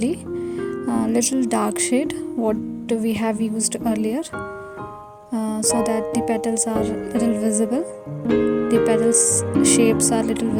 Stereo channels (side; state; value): both; identical; correlation 1.00